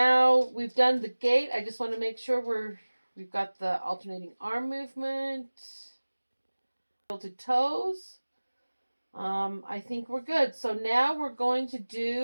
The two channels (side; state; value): both; inverted; correlation -1.00